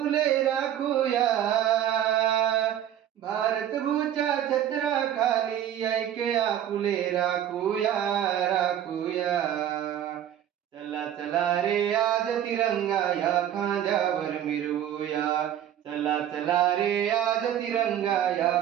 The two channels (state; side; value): quieter; left; 10.7 dB